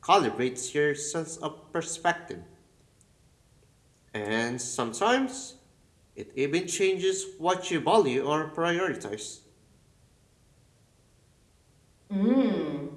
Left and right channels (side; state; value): both; identical; correlation 1.00